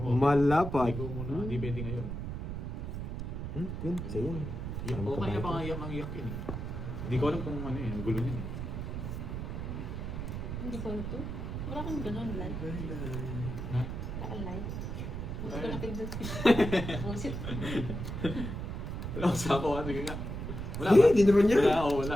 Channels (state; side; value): noise; right; rumble, 5 dB below the sound